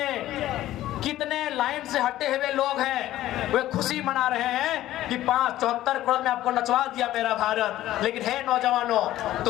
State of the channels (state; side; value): quieter; right; 14.3 dB